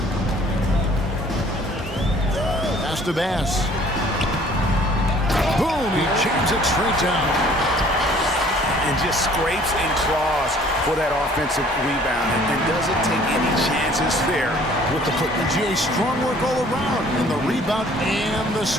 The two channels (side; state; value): both; normal; correlation 0.55